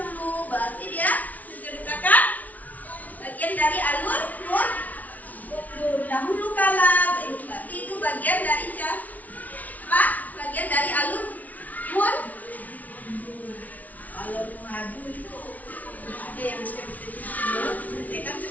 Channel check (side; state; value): right; late; 0.073 ms